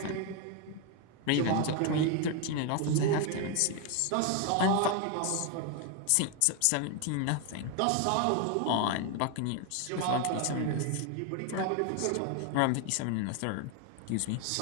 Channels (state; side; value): different; both; correlation 0.01